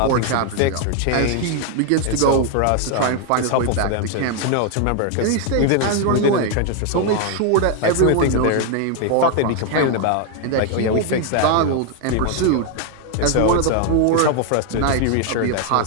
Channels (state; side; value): different; both; correlation 0.01